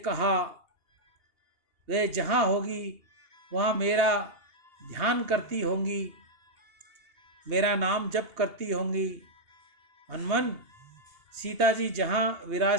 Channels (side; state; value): left; late; 2.8 ms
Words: वे जहाँ होगी वहाँ मेरा ध्यान करती होंगी, मेरा नाम जप करती होंगी। हनुमान, सीता जी जहाँ